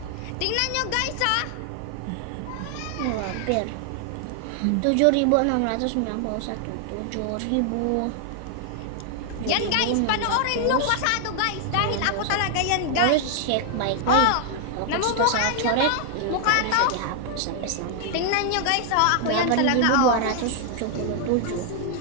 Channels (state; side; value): different; both; correlation 0.00